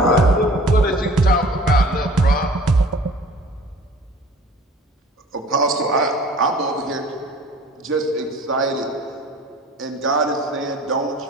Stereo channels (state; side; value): normal; both; correlation 0.47